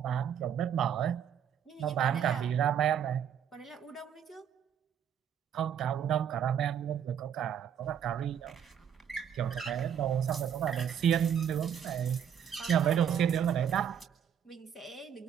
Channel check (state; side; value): quieter; left; 8.6 dB